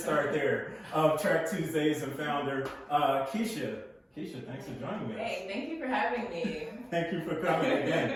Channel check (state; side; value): identical; both; correlation 1.00